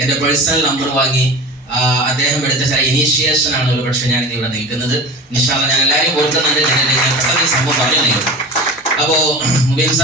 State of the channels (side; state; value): both; normal; correlation 0.33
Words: എന്റെ പേഴ്സണൽ നമ്പർ വാങ്ങി അദ്ദേഹം എടുത്ത ചില ഇനീഷ്യേഷൻ ആണ് ഒരു പക്ഷെ ഞാൻ ഇവിടെ നിൽക്കുന്നത്. ഇൻഷാ അല്ലാഹ് ഞാൻ എല്ലാവരും ഓർക്കുന്നുണ്ട്. ഞാൻ പെട്ടെന്ന് ഈ സംഭവം പറഞ്ഞു. അപ്പോ മുബീൻ